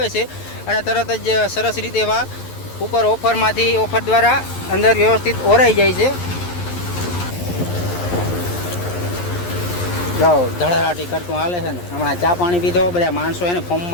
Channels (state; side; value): late; right; 11 ms